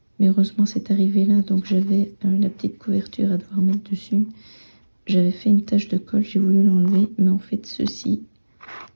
mais heureusement c'est arrivé là, donc j'avais la petite couverture à devoir mettre dessus. J'avais fait une tache de colle, j'ai voulu l'enlever, mais en fait ceci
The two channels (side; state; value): both; inverted; correlation -1.00